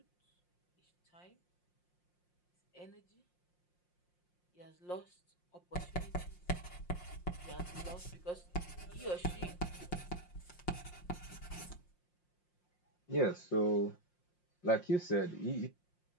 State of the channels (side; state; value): right; late; 5.6 ms